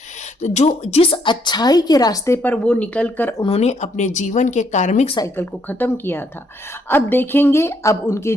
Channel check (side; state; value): both; normal; correlation 0.71